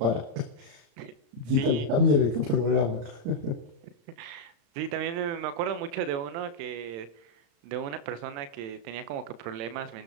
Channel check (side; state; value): left; late; 35 ms